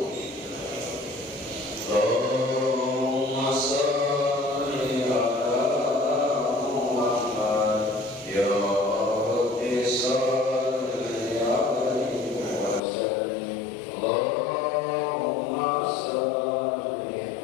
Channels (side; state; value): right; drops out; at 12.8 s